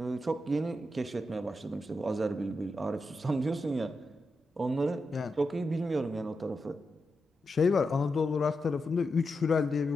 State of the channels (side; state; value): both; normal; correlation 0.87